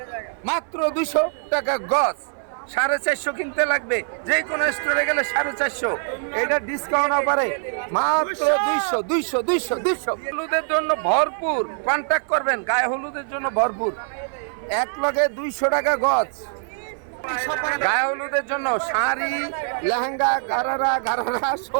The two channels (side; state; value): left; silent; 57 dB below the other